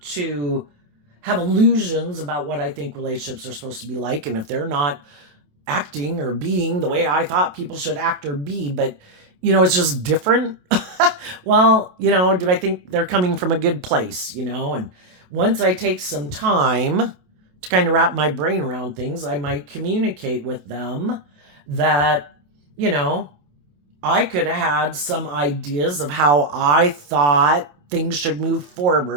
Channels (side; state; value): left; late; 28 ms